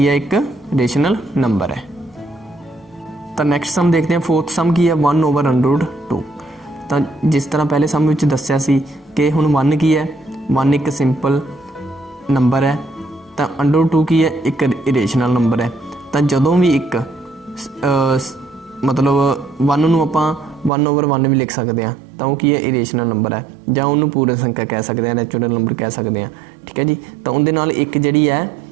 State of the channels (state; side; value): drops out; left; at 20.7 s